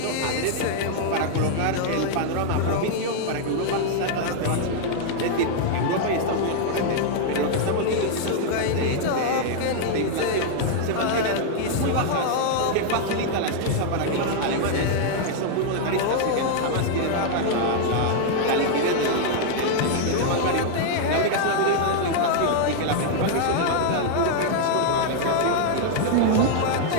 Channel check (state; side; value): different; both; correlation 0.00